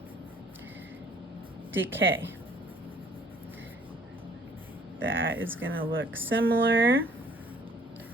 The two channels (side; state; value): both; normal; correlation 0.57